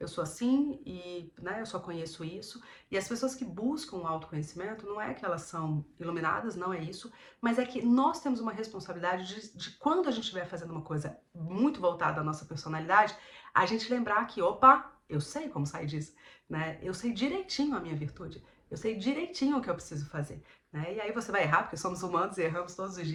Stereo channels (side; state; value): both; identical; correlation 1.00